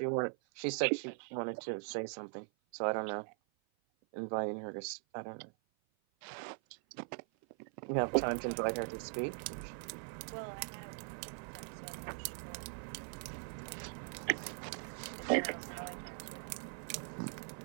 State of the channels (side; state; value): left; silent; 50 dB below the other